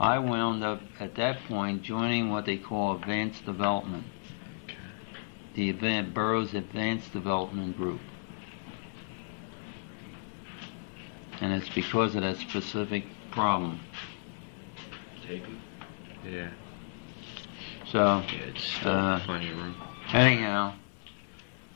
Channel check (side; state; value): right; silent; digital silence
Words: wound up at that point joining what they call advanced development, the Burroughs Advanced Development Group. And it's because of that specific problem. Yeah. So, It's still plenty of room. anyhow,